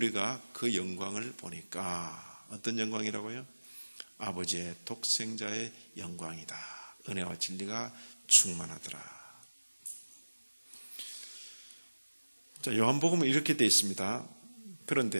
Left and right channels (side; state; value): both; inverted; correlation -1.00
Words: 그 영광을 보니까 어떤 영광이라고요? 아버지의 독생자의 영광이다. 은혜와 진리가 충만하더라. 자, 요한복음은 이렇게 되어 있습니다.